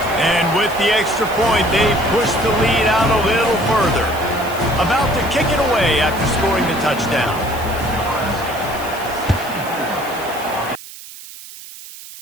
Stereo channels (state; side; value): noise; right; hiss, 16 dB below the sound